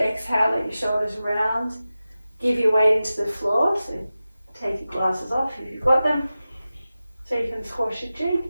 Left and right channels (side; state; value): both; inverted; correlation -0.95